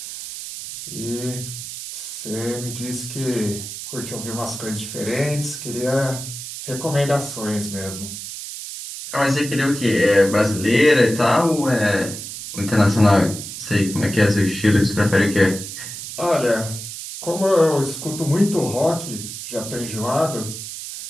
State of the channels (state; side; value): noise; right; hiss, 9 dB below the sound